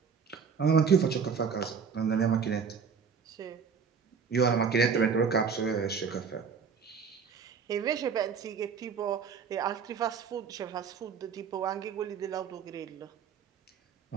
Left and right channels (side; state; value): left; quieter; 6.1 dB